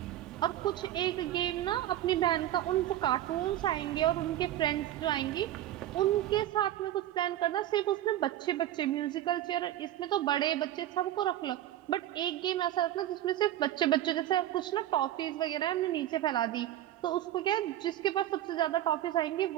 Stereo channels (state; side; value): quieter; left; 12.9 dB